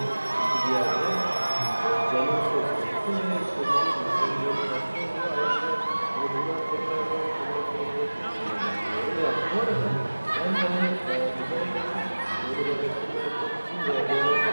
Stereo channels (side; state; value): both; inverted; correlation -1.00